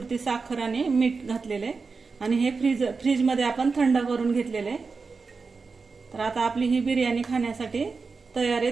साखर आणि मीठ घातलेले आणि हे फ्रीजमध्ये आपण थंड करून घेतलेले. तर आता आपली ही बिर्याणी खाण्यासाठी तयार आहे.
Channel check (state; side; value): quieter; left; 4.6 dB